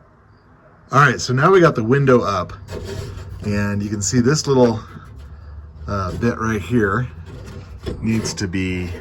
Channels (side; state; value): both; identical; correlation 1.00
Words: All right, so now we got the window up. And you can see this little bit right here needs to be